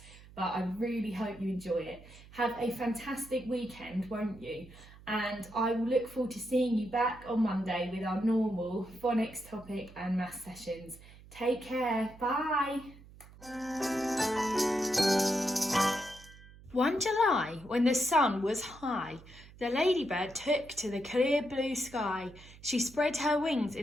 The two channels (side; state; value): right; noise; hum, 20 dB below the sound